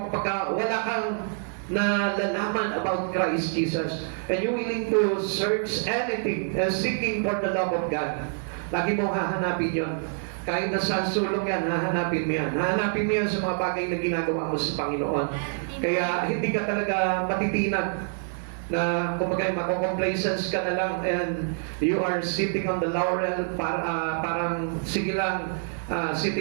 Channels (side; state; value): left; silent; 57 dB below the other